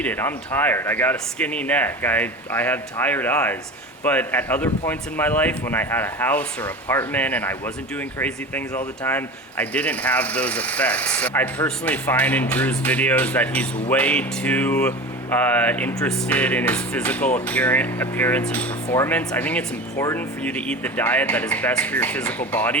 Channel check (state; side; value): normal; both; correlation 0.32